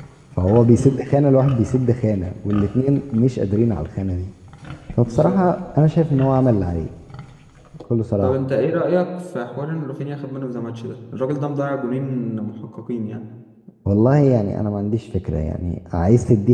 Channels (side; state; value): both; identical; correlation 1.00